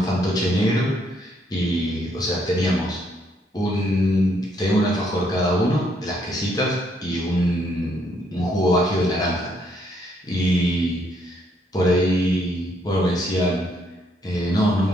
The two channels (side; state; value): both; normal; correlation 0.71